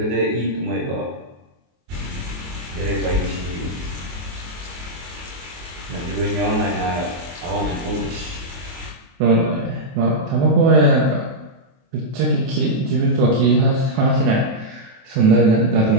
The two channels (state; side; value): late; left; 23 ms